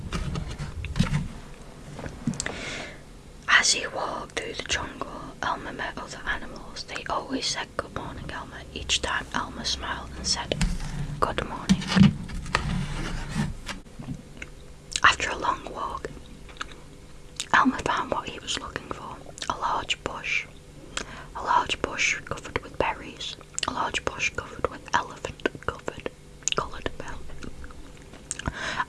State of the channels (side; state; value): both; identical; correlation 1.00